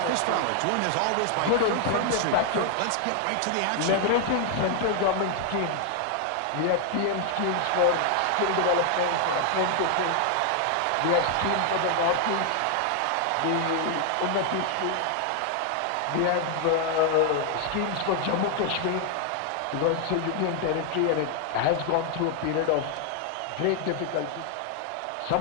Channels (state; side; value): different; both; correlation 0.00